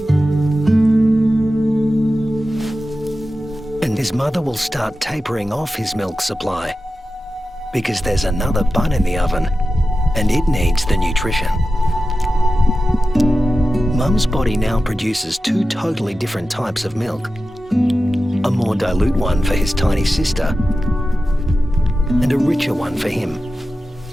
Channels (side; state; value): both; normal; correlation 0.93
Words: father will start tapering off his milk supply because there's another bun in the oven and it needs the nutrition. Mum's body now produces two totally different types of milk. A more dilute one for his tiny sister and a richer one for him.